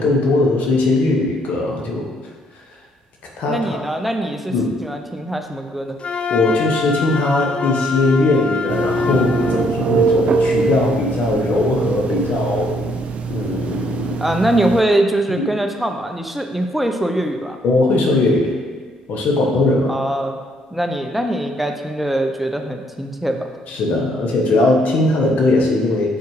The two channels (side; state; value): both; normal; correlation 0.69